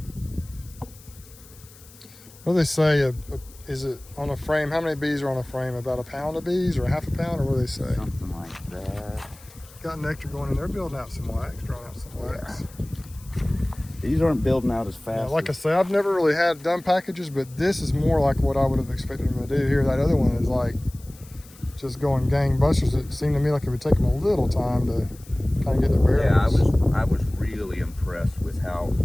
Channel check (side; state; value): left; noise; hiss, 23 dB below the sound